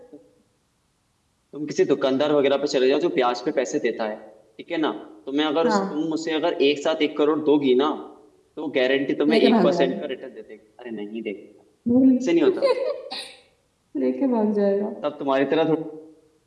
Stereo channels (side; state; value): both; identical; correlation 1.00